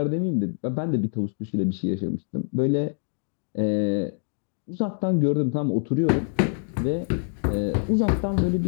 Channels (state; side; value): silent; right; digital silence